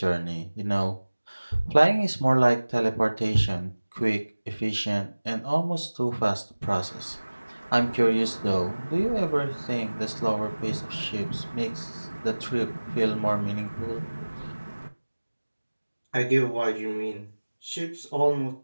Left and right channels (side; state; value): both; inverted; correlation -1.00